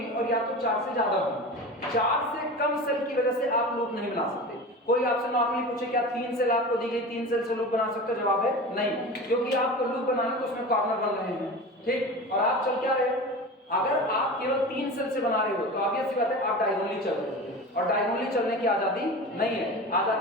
और या तो 4 से ज्यादा होंगी। 4 से कम सेल की वजह से आप लूप नहीं बना सकते। कोई आपसे नॉर्मली पूछे क्या 3 सेल आपको दी गई, 3 सेल से लूप बना सकते हो, जवाब है नहीं, क्योंकि आपको लूप बनाना तो उसमें कॉर्नर बन रहे हैं। ठीक, और आप चल क्या रहे हो, अगर आप केवल 3 सेल से बना रहे हो तो ऑब्वियस सी बात है आप डायगोनली चल रहे हो, और डायगोनली चलने की आजादी नहीं है,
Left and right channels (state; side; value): normal; both; correlation 0.31